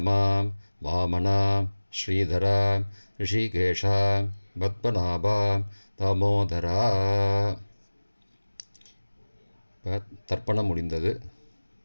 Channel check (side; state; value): both; inverted; correlation -1.00